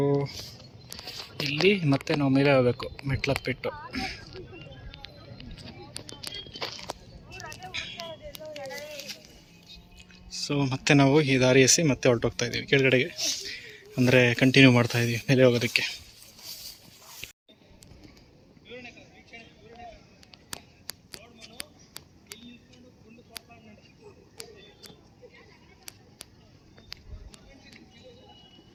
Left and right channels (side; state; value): both; identical; correlation 1.00